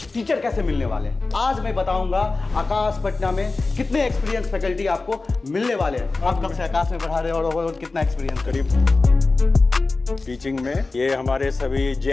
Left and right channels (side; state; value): right; quieter; 3.6 dB